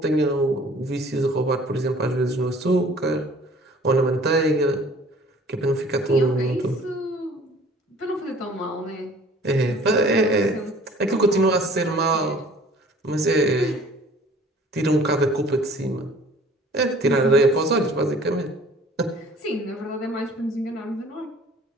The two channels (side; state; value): both; normal; correlation 0.51